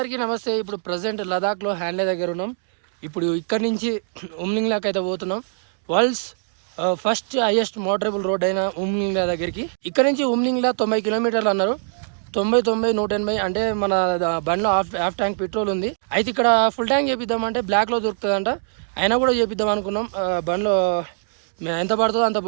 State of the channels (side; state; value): left; silent; digital silence